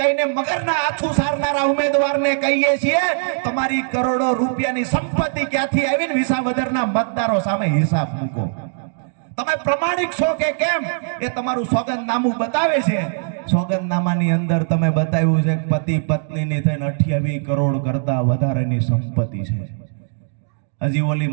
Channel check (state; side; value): silent; left; digital silence